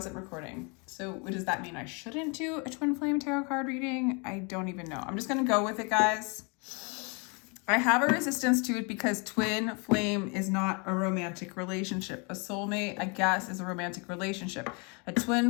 recording. So what does that mean? I shouldn't do a twin flame tarot card reading? I don't even know. I'm just going to go with it, guys. I have a resistance to it because twin flame is not a romantic relationship. A soulmate, I guess, is a romantic relationship. A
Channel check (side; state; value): right; quieter; 32.8 dB